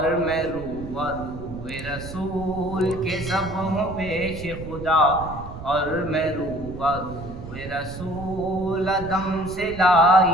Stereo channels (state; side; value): noise; right; rumble, 12 dB below the sound